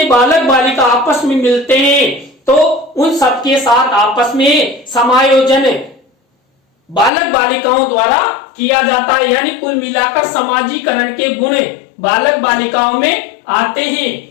बालक बालिका आपस में मिलते हैं, तो उन सबके साथ आपस में समायोजन बालक बालिकाओं द्वारा किया जाता है। यानी कुल मिलाकर समाजीकरण के गुण बालक बालिकाओं में आते हैं।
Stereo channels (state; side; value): drops out; right; at 7.1 s